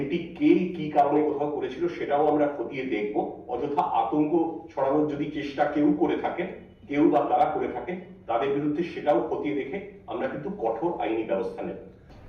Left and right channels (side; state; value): both; identical; correlation 1.00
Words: কে কি কারণে কোথাও করেছিল সেটাও আমরা খতিয়ে দেখব। অযথা আতঙ্ক ছড়ানোর যদি চেষ্টা কেউ করে থাকেন, কেউ বা তারা করে থাকেন, তাদের বিরুদ্ধে সেটাও খতিয়ে দেখে আমরা কিন্তু কঠোর আইনি ব্যবস্থা নেব।